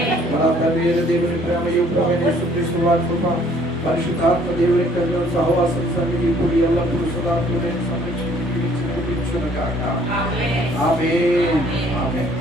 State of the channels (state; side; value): normal; both; correlation 0.59